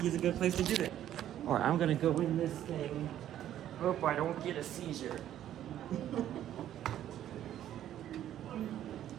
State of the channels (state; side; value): quieter; left; 11.6 dB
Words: is a good place to do it. Alright, I'm gonna go in this thing. Hope I don't get a seizure.